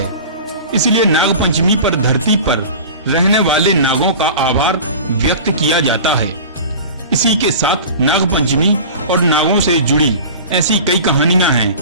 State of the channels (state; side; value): inverted; both; correlation -0.37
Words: इसलिए नागपंचमी पर धरती पर रहने वाले नागों का आभार व्यक्त किया जाता है। इसी के साथ नागपंचमी और नागों से जुड़ी ऐसी कई कहानियां